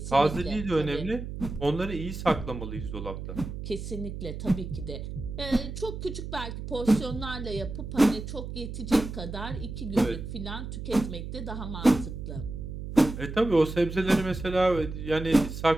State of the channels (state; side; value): noise; right; hum, 8 dB below the sound